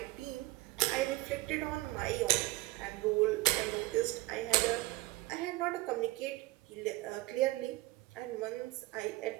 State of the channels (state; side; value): quieter; left; 19.7 dB